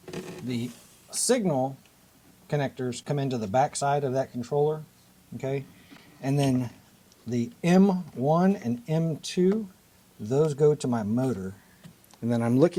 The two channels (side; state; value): both; identical; correlation 1.00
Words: The signal connectors come into the back side of that controller, okay? And then the M1 and M2, those go to my motor. And then I'm